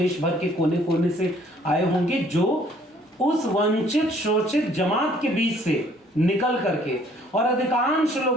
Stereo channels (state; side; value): normal; both; correlation 0.60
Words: भर के कोने कोने से आए होंगे जो उस वंचित शोषित जमात के बीच से निकल करके, और अधिकांश